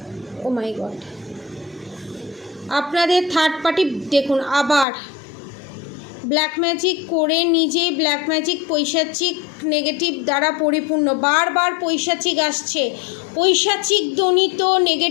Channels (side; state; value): right; drops out; at 4.9 s